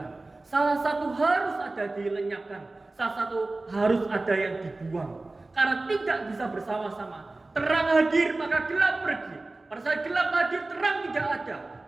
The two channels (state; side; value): quieter; left; 3.1 dB